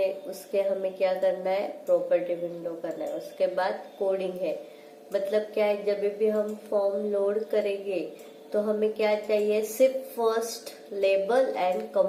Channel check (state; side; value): identical; both; correlation 1.00